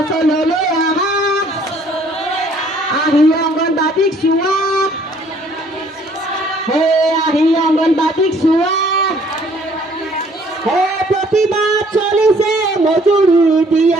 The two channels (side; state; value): both; normal; correlation 0.60